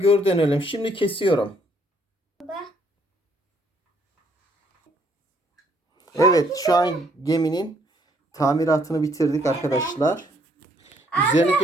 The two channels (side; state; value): both; normal; correlation 0.67